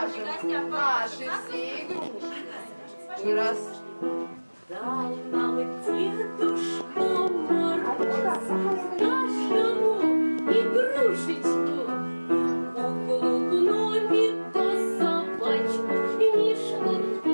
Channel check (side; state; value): both; inverted; correlation -1.00